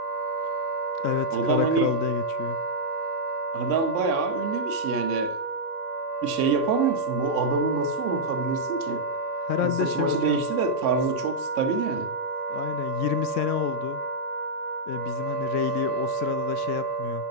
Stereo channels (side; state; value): right; late; 3.6 ms